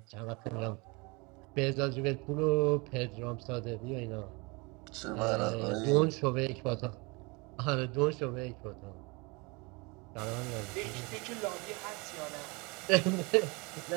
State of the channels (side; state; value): left; quieter; 27.8 dB